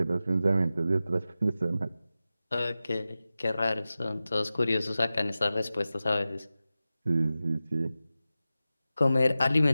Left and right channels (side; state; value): both; inverted; correlation -0.94